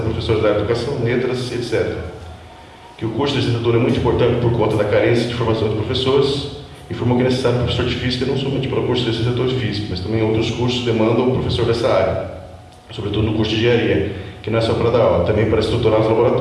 professores da área de educação, letras, etc. Que o curso de licenciatura é muito importante por conta da carência de formação de professores. Informou que é necessário um professor de física não somente para o curso de licenciatura de física, mas também outros cursos demandam um professor dessa área, sobretudo no curso de engenharia, que não é só para dar aula, também para estruturar os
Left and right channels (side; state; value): both; identical; correlation 1.00